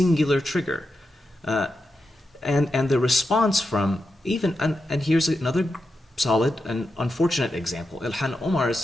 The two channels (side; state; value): both; normal; correlation 0.88